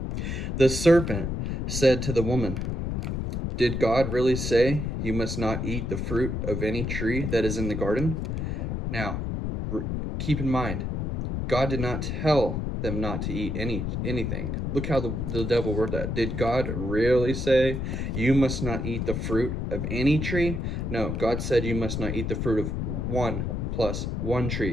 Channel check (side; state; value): left; noise; rumble, 2 dB below the sound